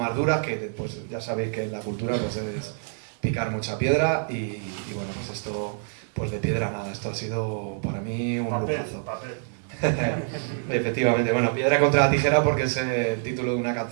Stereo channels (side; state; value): left; silent; 61 dB below the other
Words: duras, que pues ya sabéis que en la cultura pues es picar mucha piedra, y bueno, pues esto, pues de piedra nada, esto ha sido para mí un lujazo. Efectivamente, bueno, piedra contra la tijera porque es el título de una